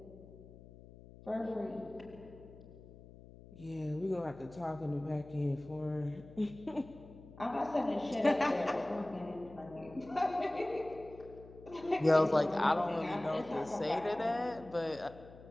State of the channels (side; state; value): left; noise; hum, 19 dB below the sound